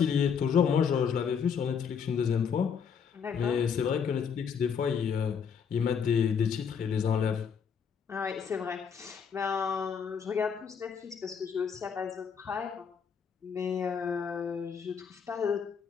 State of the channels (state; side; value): quieter; right; 6.8 dB